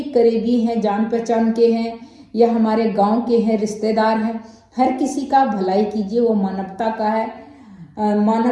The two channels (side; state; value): both; identical; correlation 1.00